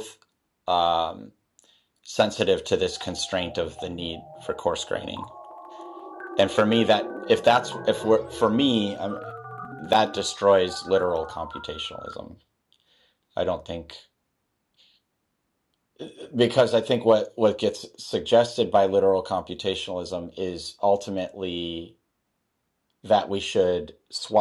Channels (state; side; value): identical; both; correlation 1.00